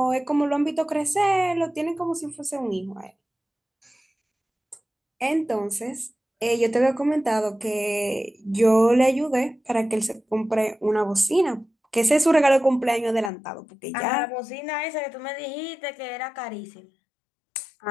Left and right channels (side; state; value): right; drops out; at 13.3 s